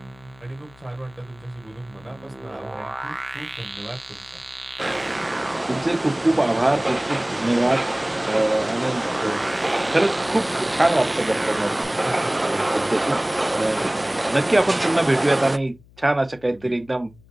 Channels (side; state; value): left; noise; hum, 26 dB below the sound